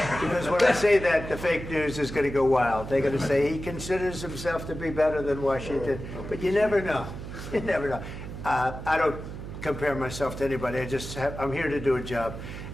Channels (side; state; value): right; noise; hum, 9 dB below the sound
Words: when I say that, the fake news is going to go wild. They're going to say he considers himself to be better than Washington. But you never know. You never know. I don't compare myself to anybody. I'm here to do a job.